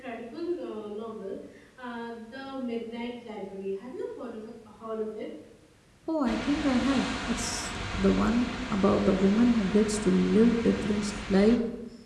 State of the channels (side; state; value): both; identical; correlation 1.00